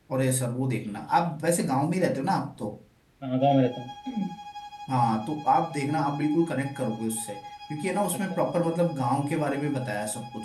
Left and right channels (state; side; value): identical; both; correlation 1.00